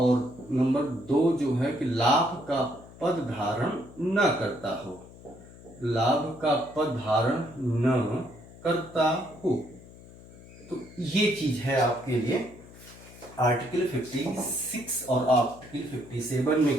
नंबर 2 जो है कि लाभ का पद धारण न करता हो, लाभ का पद धारण न करता हो। तो ये चीज है आपके लिए आर्टिकल 56 और आर्टिकल 57 में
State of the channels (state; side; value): noise; left; hum, 20 dB below the sound